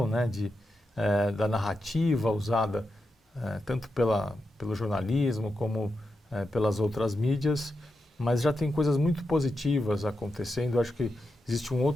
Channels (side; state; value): both; normal; correlation 0.87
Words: né, da narrativa usada tanto pelo jornalismo como pelas outras mídias, mas já tem coisas muito positivas acontecendo. Eu acho que existe um